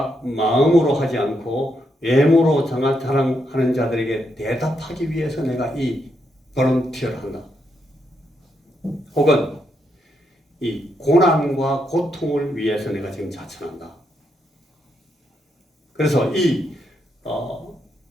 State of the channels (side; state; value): both; normal; correlation 0.80